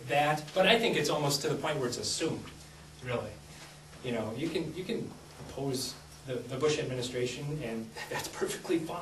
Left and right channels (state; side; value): identical; both; correlation 1.00